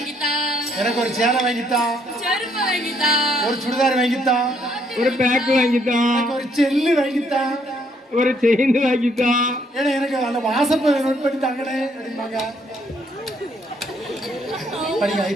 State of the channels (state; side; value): normal; both; correlation 0.69